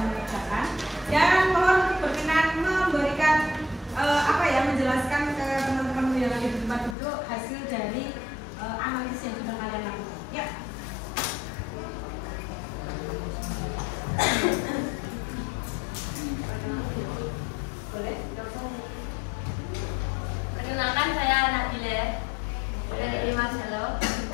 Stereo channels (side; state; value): right; drops out; at 7.0 s